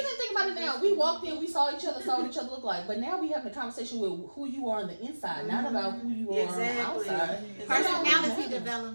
think about it now. We walked in, we saw what each other look like. But now we having a conversation with who you are on the inside, not about who you are on the outside. Personality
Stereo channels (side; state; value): both; inverted; correlation -1.00